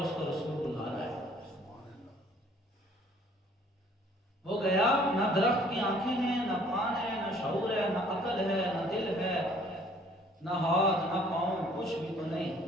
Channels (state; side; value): normal; both; correlation 0.58